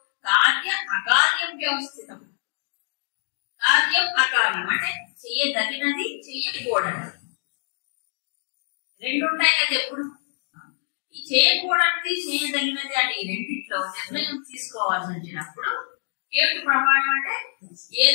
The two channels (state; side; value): silent; right; digital silence